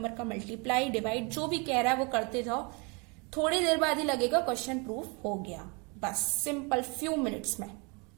का मल्टीप्लाई डिवाइड जो भी कह रहा है वो करते जाओ, थोड़ी देर बाद ही लगेगा क्वेश्चन प्रूफ हो गया, बस सिंपल फ्यू मिनट्स में।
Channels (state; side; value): quieter; left; 31.1 dB